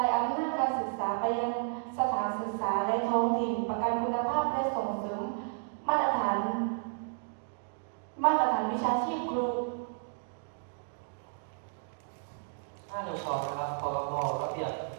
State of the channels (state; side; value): silent; left; digital silence